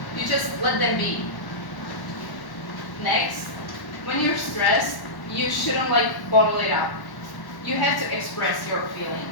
You just let them be. Next, when you're stressed, you shouldn't bottle it up. You have to express your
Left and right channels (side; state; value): right; late; 1.1 ms